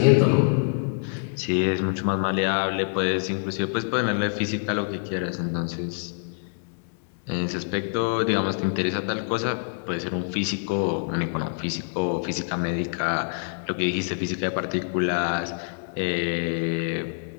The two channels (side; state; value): right; silent; digital silence